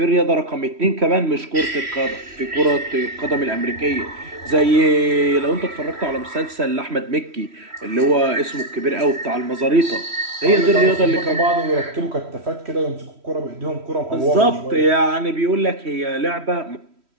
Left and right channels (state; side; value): late; left; 3.1 ms